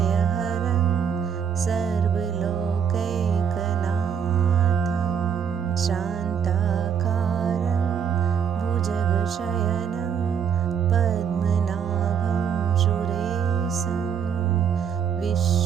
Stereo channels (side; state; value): left; quieter; 7.6 dB